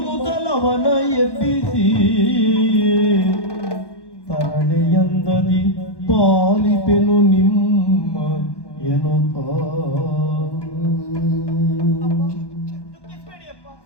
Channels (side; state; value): right; late; 1.1 ms